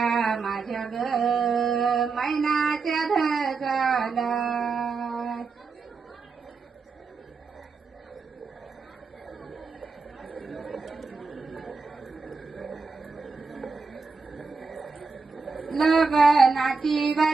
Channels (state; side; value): quieter; left; 4.5 dB